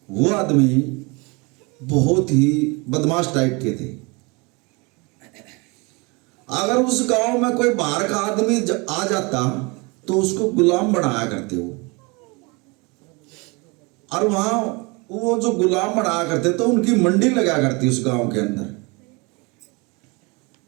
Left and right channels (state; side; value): quieter; left; 27.9 dB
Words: वो आदमी बहुत ही बदमाश टाइप के थे। अगर उस गांव में कोई बाहर का आदमी आ जाता तो उसको गुलाम बनाया करते वो, और वहां वो जो गुलाम बनाया करते तो उनकी मंडी लगा करती उस गांव के अंदर,